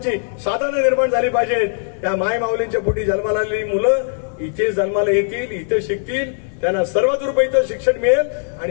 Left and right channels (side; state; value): right; silent; digital silence